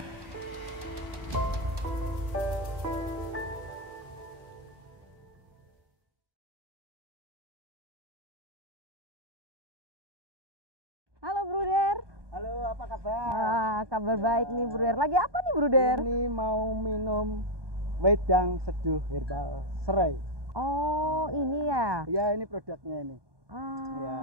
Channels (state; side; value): late; left; 1.2 ms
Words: Halo Bruder. Halo, apa kabar? Kabar baik nih Bruder. Lagi apa nih Bruder? Ini mau minum wedang seduh herbal serai. Oh, ini ya? Ya, ini produknya ini. Ya.